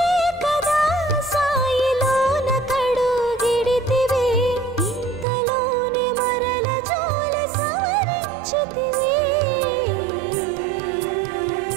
కదా సాయిలోన కడుగిడితివి ఇంతలోనే మరల జోలి సవరించితివి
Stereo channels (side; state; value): left; drops out; at 5.2 s